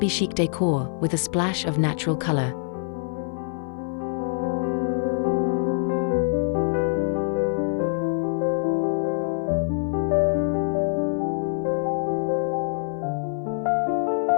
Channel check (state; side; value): silent; right; 56 dB below the other